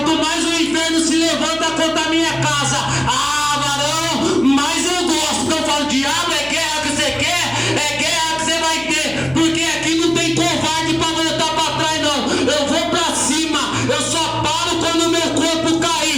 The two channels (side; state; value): left; noise; hum, 20 dB below the sound